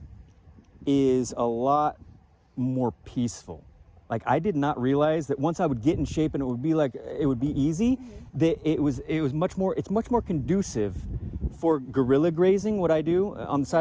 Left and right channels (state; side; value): identical; both; correlation 1.00